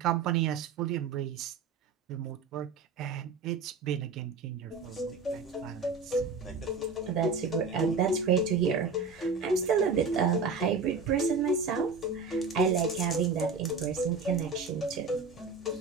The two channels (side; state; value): left; quieter; 4.6 dB